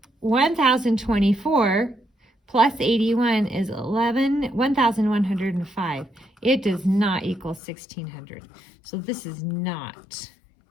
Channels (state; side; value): drops out; right; at 7.6 s